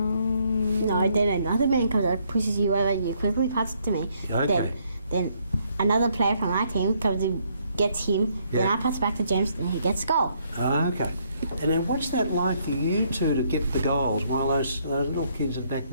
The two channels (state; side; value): inverted; both; correlation -0.70